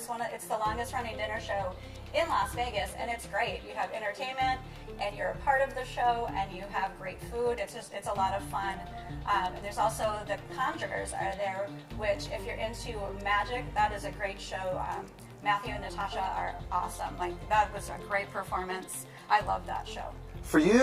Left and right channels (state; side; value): identical; both; correlation 1.00